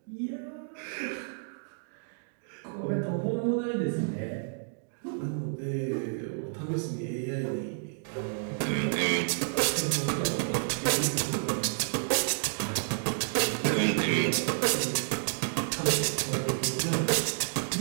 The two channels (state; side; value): silent; left; digital silence